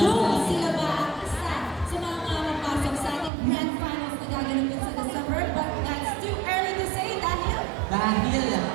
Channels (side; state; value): left; drops out; at 3.3 s